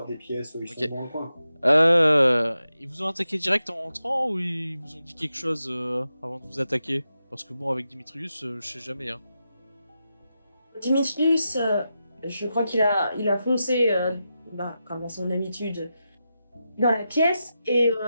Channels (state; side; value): inverted; both; correlation -0.89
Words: des pièces, ils Ok. sont dans le coin, quoi. Ils vous ont attaqué direct en rentrant ou ils vous ont dit quelque chose avant de vous attaquer? Parce que bon, avec Dimitrius, je sais jamais. Hein. Dimitrius, je crois qu'il a foncé, comme à son habitude, dans la pièce et